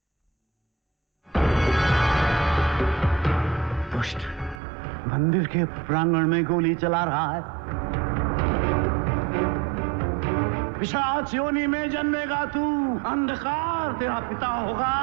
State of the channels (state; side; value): drops out; left; at 4.6 s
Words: दुष्ट मंदिर के प्रांगण में गोली चला रहा है। पिशाच योनि में जन्मेगा तू। अंधकार तेरा पिता